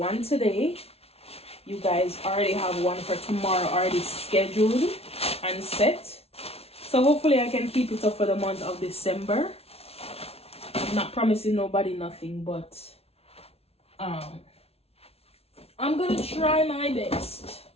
today. You guys already have one for tomorrow already scheduled and set. So hopefully I can keep it up for the month of December. I'm not promising nobody nothing, but I'm gonna try my best.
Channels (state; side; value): late; right; 0.30 ms